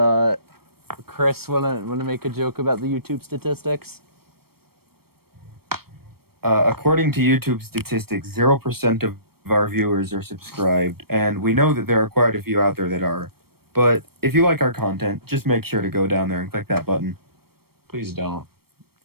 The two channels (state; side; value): late; left; 0.95 ms